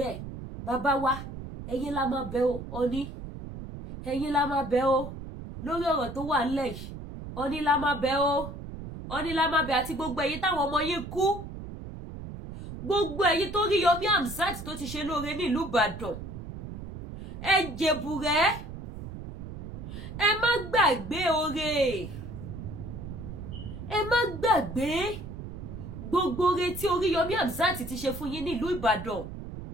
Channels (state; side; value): noise; right; rumble, 10 dB below the sound